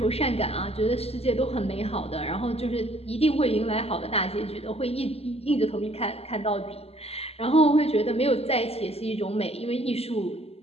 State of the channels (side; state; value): right; late; 0.29 ms